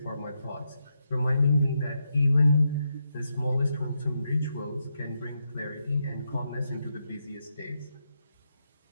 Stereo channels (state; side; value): inverted; both; correlation -0.83